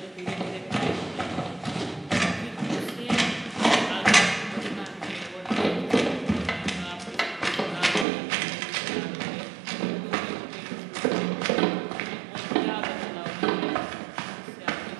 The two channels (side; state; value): left; drops out; at 8.1 s